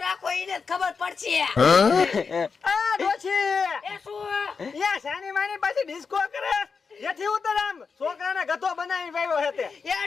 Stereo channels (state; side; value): quieter; right; 5.2 dB